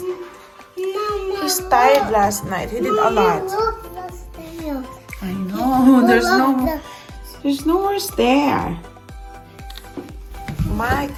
he's tired last night. He did a lot. Look the stairs. I know. There's no more stair. My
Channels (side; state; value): both; identical; correlation 1.00